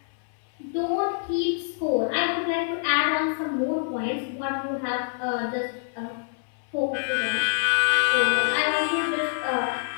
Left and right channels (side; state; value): right; silent; 61 dB below the other